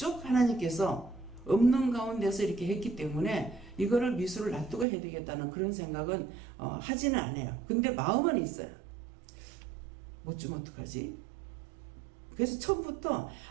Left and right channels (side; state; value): left; drops out; at 4.9 s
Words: 하나님께서 없는 가운데서 이렇게 했기 때문에 이거를 미수를 놔두고 해야 되겠다는 그런 생각은 하지는 않아요. 근데 마음은 있어요. 못 주면 어떡하지? 그래서 처음부터